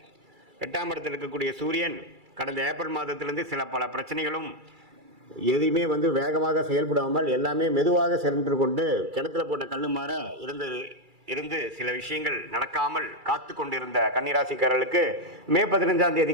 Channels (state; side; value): late; left; 2.3 ms